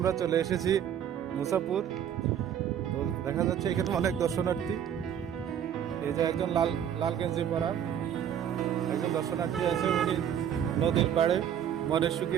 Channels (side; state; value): left; quieter; 9.3 dB